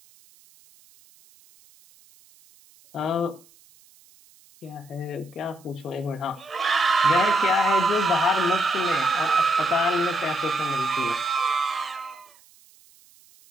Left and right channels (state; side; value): noise; right; hiss, 28 dB below the sound